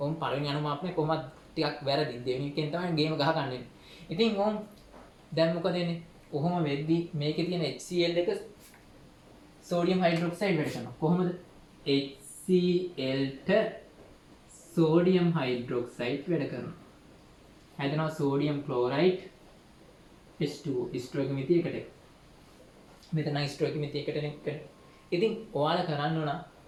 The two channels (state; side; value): identical; both; correlation 1.00